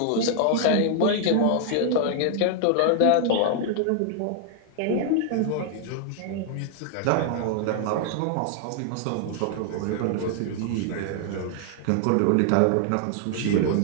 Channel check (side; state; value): both; different; correlation 0.00